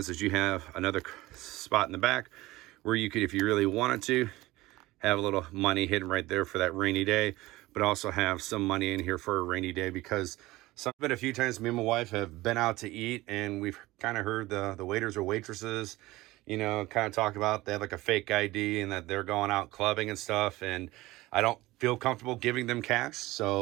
you have another spot in the back where you could, if you really wanted to, have a little money hidden right there for that rainy day, but also have some money in here for a rainy day, because been a few times me and my wife have been out to eat, and we've kind of heard the waiters or waitresses, kind of talk about they have like a fake ID and that they're going out clubbing and stuff. And I don't feel comfortable giving them cash.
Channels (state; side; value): quieter; left; 18.9 dB